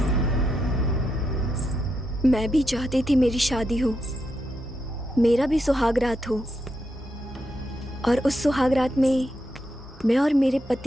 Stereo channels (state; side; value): normal; both; correlation 0.83